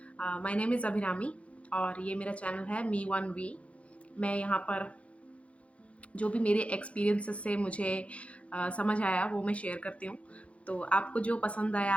माय नेम इज़ अभिरामी और ये मेरा चैनल है मी वन वी। मैं यहाँ पर जो भी मेरे एक्सपीरियंसेस से मुझे समझ आया वो मैं शेयर करती हूँ। तो आपको जो पसंद आया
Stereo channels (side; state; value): right; late; 0.063 ms